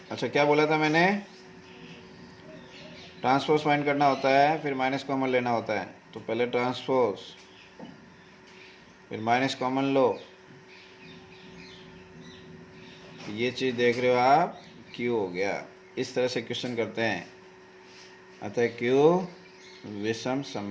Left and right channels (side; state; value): both; identical; correlation 1.00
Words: अच्छा, क्या बोला था मैंने, ट्रांसपोज फाइंड करना होता है, फिर माइनस कॉमन लेना होता है। तो पहले ट्रांसपोज, फिर माइनस कॉमन लो। ये चीज़ देख रहे हो आप, Q हो गया। इस तरह से क्वेश्चन करते हैं। अतः Q विषम